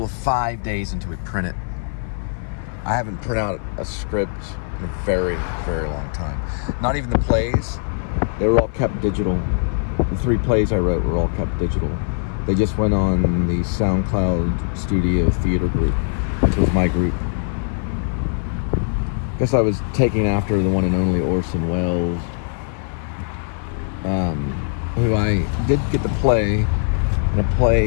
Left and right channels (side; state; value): right; silent; 55 dB below the other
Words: of 5 days until we print it. I haven't printed out a script in a very, very long time. Not even the plays. They were all kept digital. The 3 plays I wrote were all kept digital. They just went on the SoundCloud Studio Theater group, which was my group. I guess I was taking after the one and only Orson Welles, who I did get to play in a